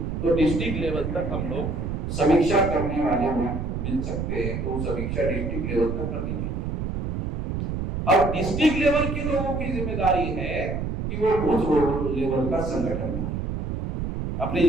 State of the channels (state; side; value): noise; right; rumble, 2 dB below the sound